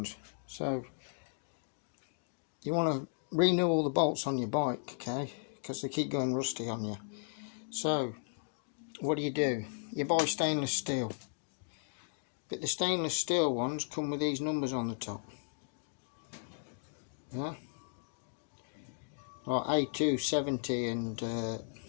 So you want to renew all the bolts on your bike, okay, because they keep going rusty on you. So what do? You buy stainless steel, but the stainless steel ones come with these numbers on the top. Yeah, like A270 and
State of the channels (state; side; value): silent; right; digital silence